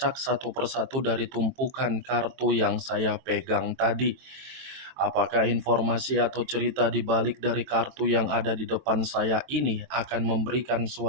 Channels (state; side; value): late; left; 23 ms